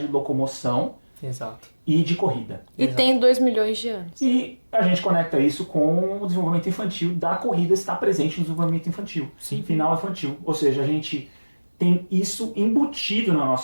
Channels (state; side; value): inverted; both; correlation -1.00